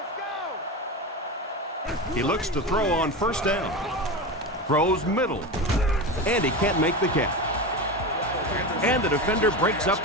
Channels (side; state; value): both; normal; correlation 0.22